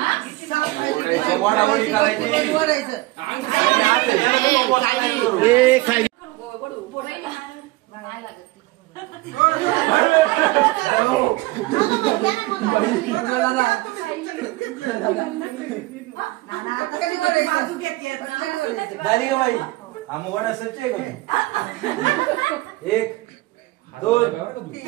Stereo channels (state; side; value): quieter; left; 20.0 dB